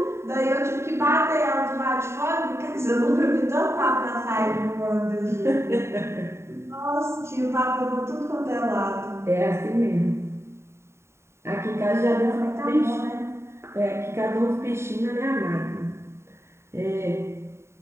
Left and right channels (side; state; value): left; late; 0.13 ms